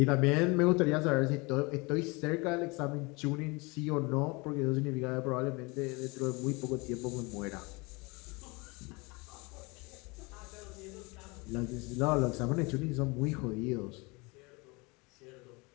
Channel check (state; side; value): quieter; right; 27.0 dB